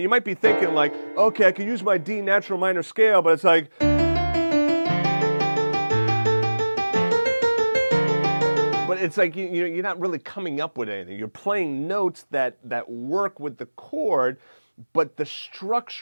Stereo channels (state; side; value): inverted; both; correlation -1.00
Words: might be thinking like, okay, I can use my D natural minor scale, but it's like, but it's like you're not really coming up with anything. You're playing notes that work with the chord, but the